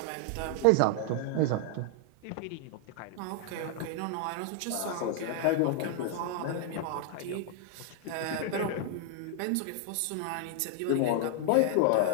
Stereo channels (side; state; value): both; different; correlation 0.00